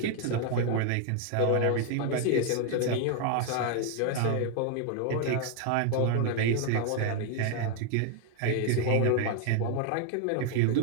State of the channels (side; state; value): both; different; correlation 0.01